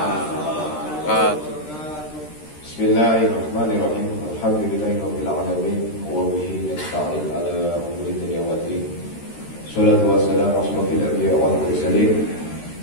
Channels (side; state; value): right; late; 13 ms